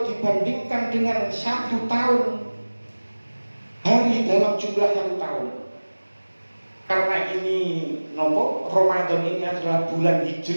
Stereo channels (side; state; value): both; inverted; correlation -1.00